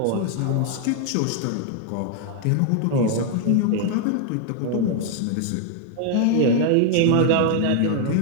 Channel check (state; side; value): different; both; correlation 0.01